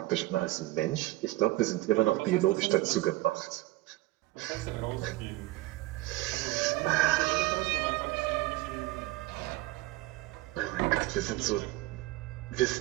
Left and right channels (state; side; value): quieter; left; 18.3 dB